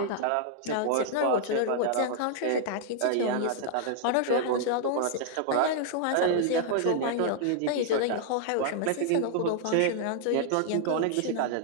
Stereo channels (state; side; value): different; both; correlation -0.01